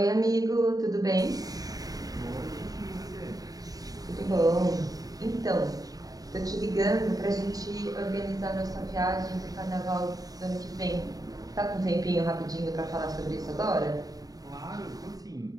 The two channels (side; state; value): left; late; 0.18 ms